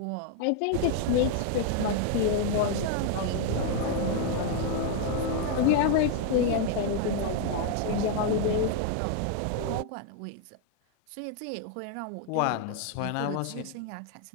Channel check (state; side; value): different; both; correlation 0.00